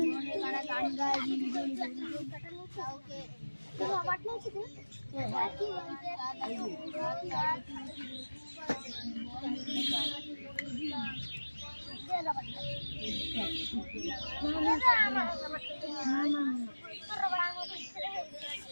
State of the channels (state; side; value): inverted; both; correlation -1.00